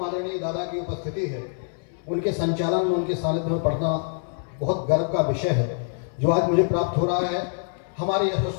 आदरणीय दादा की उपस्थिति है, उनके संचालन में, उनके सानिध्य में पढ़ना बहुत गर्व का विषय है जो आज मुझे प्राप्त हो रहा है। हमारे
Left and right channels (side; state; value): right; silent; 56 dB below the other